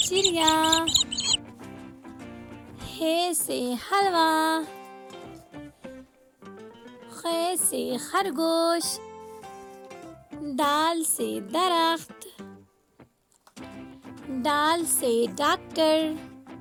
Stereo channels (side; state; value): both; identical; correlation 1.00